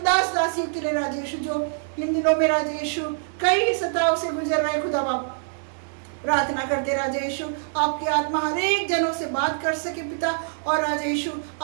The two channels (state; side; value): silent; left; digital silence